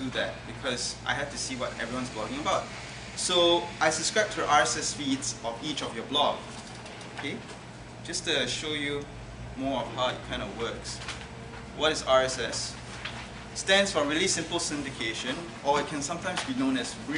that because I have to see what everyone's blogging about. So I subscribe to the RSS feeds of each of your blog. Okay, just to show you more of how it kind of works. What is RSS? Stands for Really Simple Syndication, or it can sometimes be known as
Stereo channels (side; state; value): both; identical; correlation 1.00